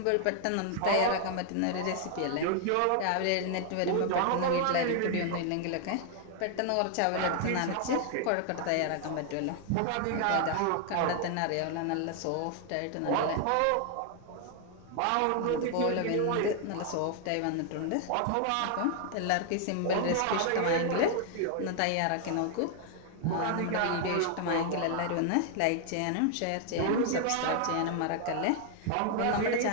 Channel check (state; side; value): different; both; correlation 0.00